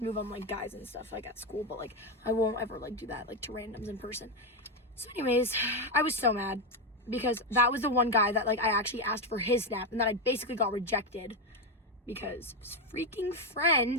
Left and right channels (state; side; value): normal; both; correlation 0.08